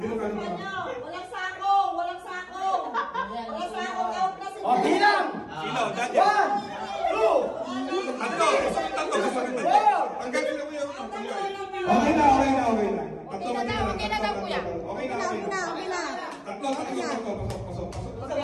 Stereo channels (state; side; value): identical; both; correlation 1.00